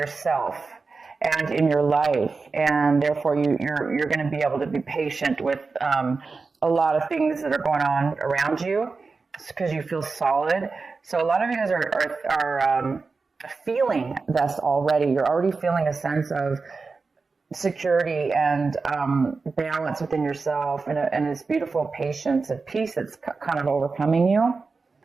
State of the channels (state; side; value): quieter; left; 4.3 dB